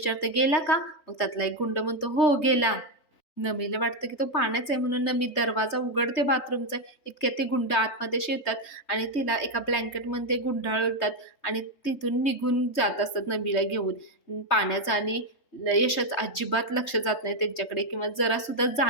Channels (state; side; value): late; right; 3.2 ms